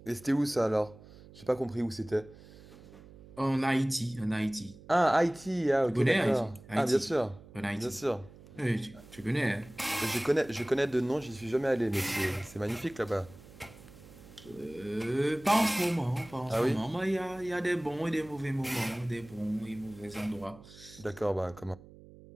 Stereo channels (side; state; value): right; noise; hum, 20 dB below the sound